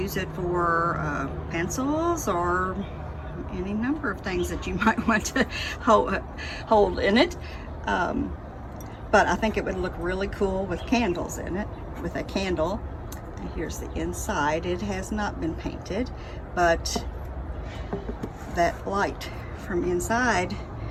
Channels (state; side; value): identical; both; correlation 1.00